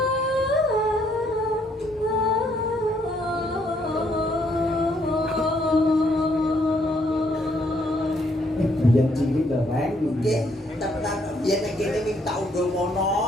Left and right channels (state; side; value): normal; both; correlation 0.70